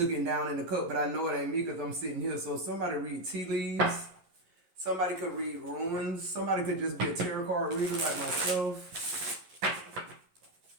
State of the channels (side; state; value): left; late; 11 ms